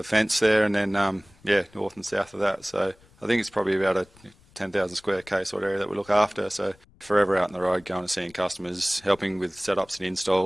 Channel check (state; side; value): noise; left; rumble, 28 dB below the sound